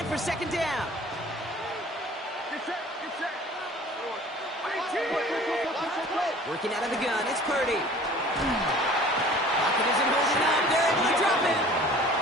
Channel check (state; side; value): normal; both; correlation 0.47